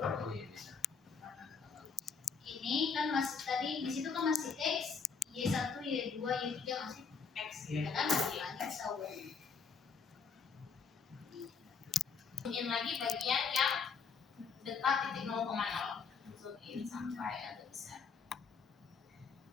Ini kan masih tadi di situ kan masih X, Y1, Y2, Y3 masih X. Ya kan bilangnya tahu. Zoom lagi bagian yang dekat titik 0,0. Zoom in sampai agak besar.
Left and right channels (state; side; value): quieter; right; 5.5 dB